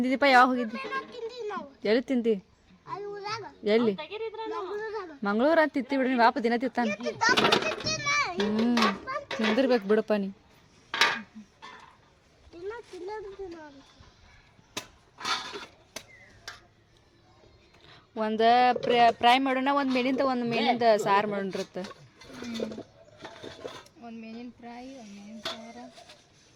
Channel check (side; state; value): both; identical; correlation 1.00